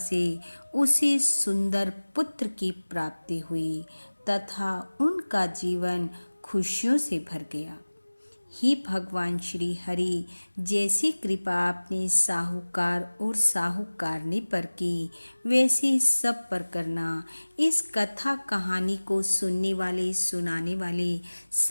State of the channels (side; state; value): both; inverted; correlation -1.00